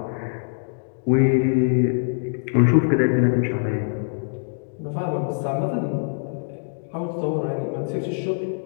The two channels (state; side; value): silent; right; digital silence